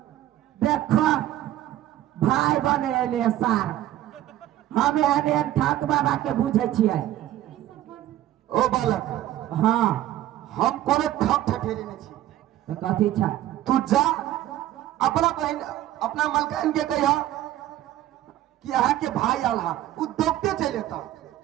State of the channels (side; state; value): left; quieter; 13.5 dB